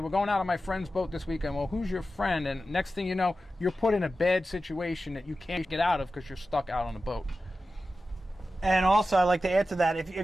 going out on my friend's boat this weekend. Well, who's your friend? And next thing you know, you're put in a bad situation that you can't get out of because you're stuck out on a boat. And also, I'd like to add to that,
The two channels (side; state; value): both; normal; correlation 0.93